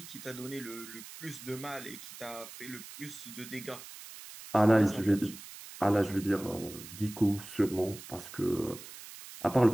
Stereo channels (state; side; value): noise; right; hiss, 14 dB below the sound